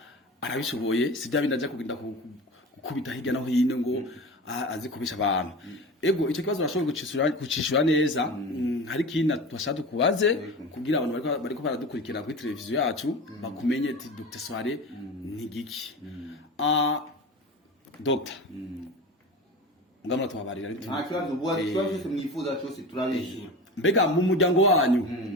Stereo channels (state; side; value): normal; both; correlation 0.31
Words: arabishoboye sijya bindaje kugenda gukubita hirya no hino ngo azi kubisha abantu. Ego icyo kibazo urashobora gucishura neza. Hari kintu twashaka kubaze kugira abantu bariko baradukurikira kuri televiziyo yacu bakumenye ati Dr. Soirée ni giki. Dr. Ngamara tubabarira ari nta kibazo ubuwa cyose mwifuza cyose turabishira. Mbega mu muryango wanyu